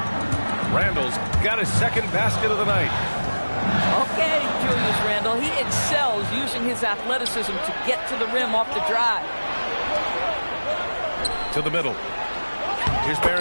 Randall's got his second basket of the night. Okay, Julius Randle. He excels using his athleticism to get to the rim off the drive. To the middle. Here's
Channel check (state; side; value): inverted; both; correlation -1.00